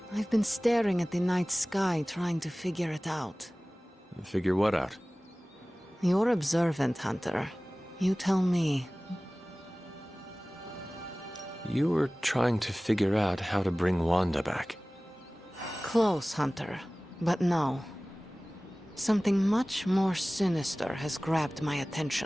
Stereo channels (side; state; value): both; normal; correlation 0.98